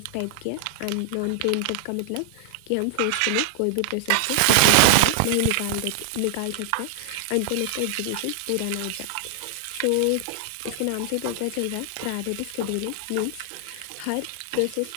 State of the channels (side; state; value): both; different; correlation -0.01